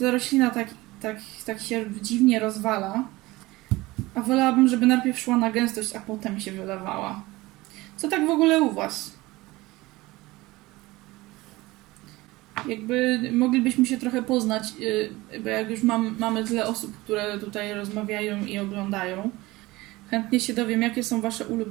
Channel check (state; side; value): quieter; left; 20.1 dB